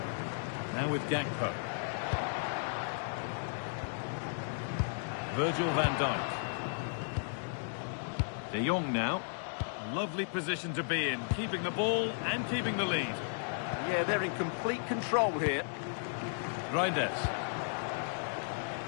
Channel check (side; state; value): right; silent; digital silence